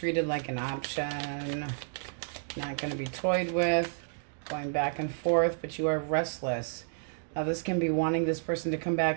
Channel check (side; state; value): left; silent; digital silence